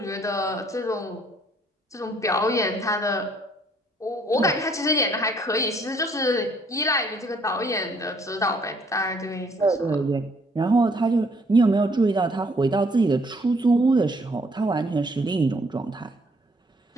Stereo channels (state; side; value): normal; both; correlation 0.64